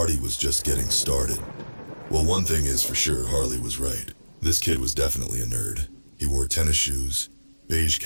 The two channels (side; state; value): both; inverted; correlation -1.00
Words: was just getting started. Well, one thing is for sure, Harley was right. This kid was definitely a nerd. He wore tennis shoes, beige